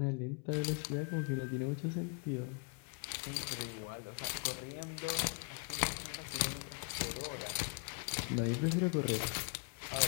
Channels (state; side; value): quieter; right; 37.1 dB